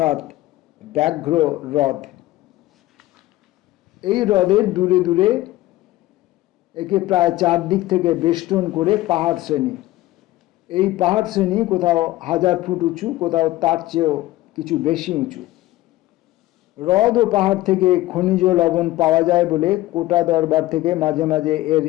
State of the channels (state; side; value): quieter; right; 17.0 dB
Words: ব্যাঘ্র হ্রদ। এই হ্রদের দূরে দূরে একে প্রায় 4 দিক থেকে বেষ্টন করে পাহাড় শ্রেণী। এই পাহাড় শ্রেণী কোথাও 1000 ফুট উঁচু, কোথাও তার চেয়েও কিছু বেশি উঁচু। হ্রদ ও পাহাড় থেকে খনিজ লবণ পাওয়া যায় বলে কোটা দরবার থেকে মাঝে মাঝে এর